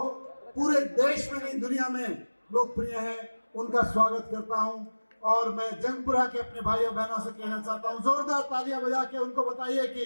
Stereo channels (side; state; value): both; inverted; correlation -1.00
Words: पूरे देश में नहीं दुनिया में लोकप्रिय है, उनका स्वागत करता हूं। और मैं जंगपुरा के अपने भाइयों बहनों से कहना चाहता हूं, जोरदार तालियां बजा के उनको बताइए कि